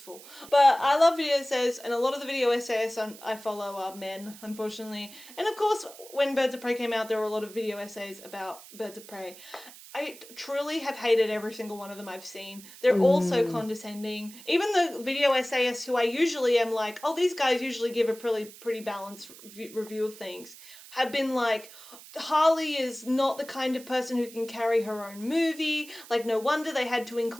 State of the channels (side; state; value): right; noise; hiss, 18 dB below the sound